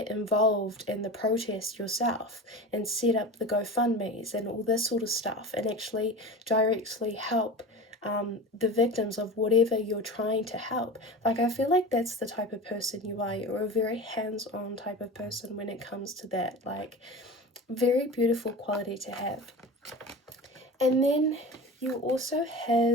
involved in the protest yourself and set up the GoFundMes and all this sort of stuff, and actually directly help the victims of whatever you're trying to help. Like, I feel like that's the type of person you are. You're a very hands-on type of person when it comes to that. Like, very beautiful quality to have. And then you also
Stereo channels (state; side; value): normal; both; correlation 0.31